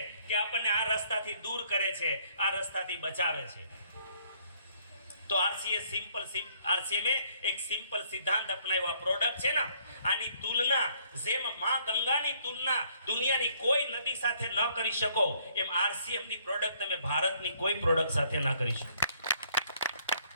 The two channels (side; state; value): both; inverted; correlation -0.64